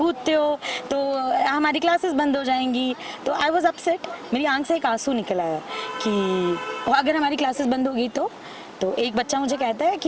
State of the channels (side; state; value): both; identical; correlation 1.00